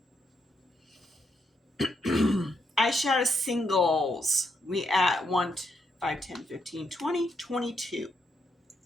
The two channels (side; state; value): both; normal; correlation 0.78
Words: Eyeshadow singles. We at 1, 5, 10, 15, 20, 22.